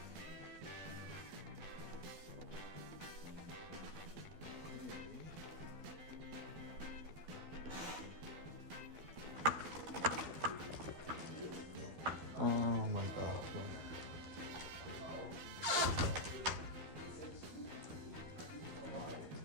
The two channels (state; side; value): late; left; 12 ms